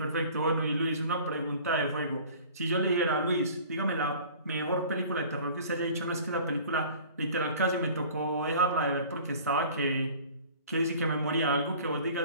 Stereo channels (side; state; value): both; inverted; correlation -0.46